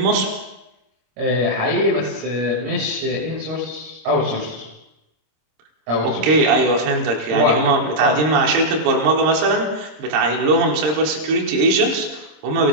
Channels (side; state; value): left; late; 26 ms